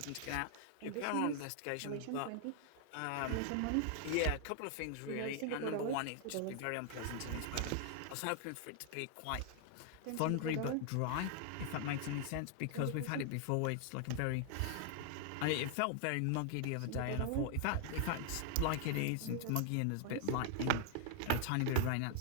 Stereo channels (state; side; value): different; both; correlation 0.00